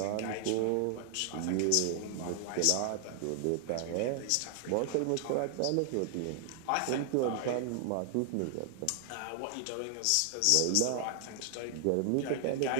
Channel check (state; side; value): different; both; correlation 0.00